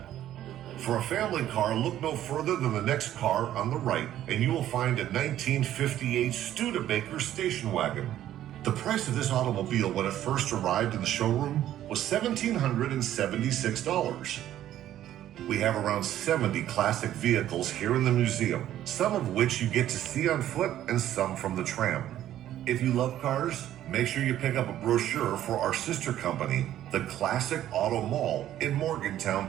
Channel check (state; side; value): quieter; left; 12.2 dB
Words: For a family car, look no further than the next car on the right, and you will find a 1958 Studebaker station wagon. The price of this automobile when it first arrived in the showroom was $1,776. We have around 70 classic vehicles here in the museum, some of which you get to see on foot and some from the tram. If you love cars, make sure you pick up a brochure for our sister company, the Classic Auto Mall in Morgantown,